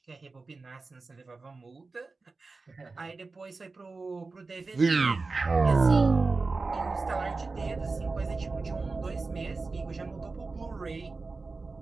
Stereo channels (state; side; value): quieter; left; 3.9 dB